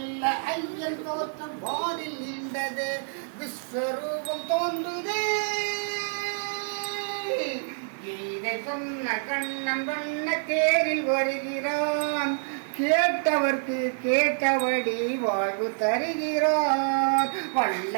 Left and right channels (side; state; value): left; silent; digital silence